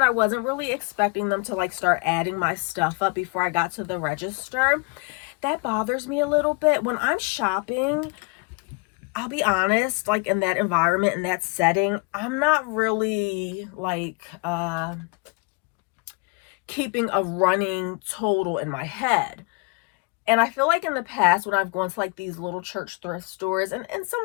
I wasn't really expecting them to like start adding my stuff up before I got to the register. That bothers me a little bit. When I'm shopping, I'll be honest, like in that environment, in that setting, I'm not really like keeping a running total in my head. And I feel like in the past when I've gone to like these little church thrift stores, and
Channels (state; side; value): quieter; right; 31.2 dB